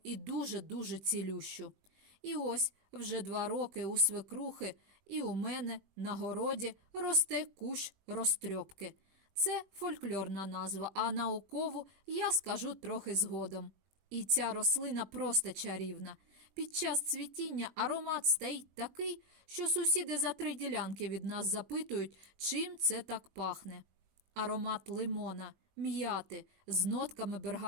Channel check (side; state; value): left; late; 21 ms